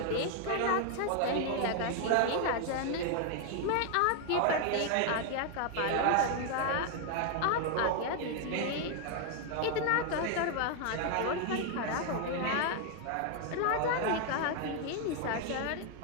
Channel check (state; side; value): different; both; correlation 0.00